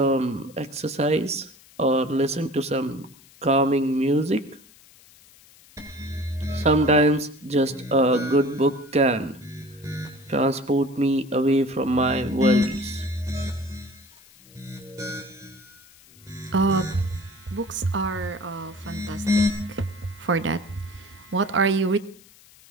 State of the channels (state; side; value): noise; left; hiss, 25 dB below the sound